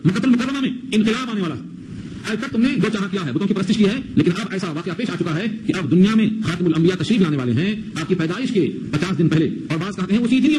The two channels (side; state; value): both; identical; correlation 1.00